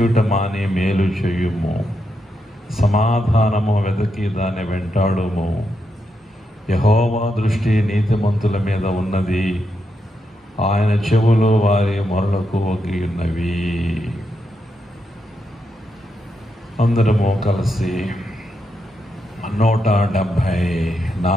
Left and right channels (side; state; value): both; normal; correlation 0.83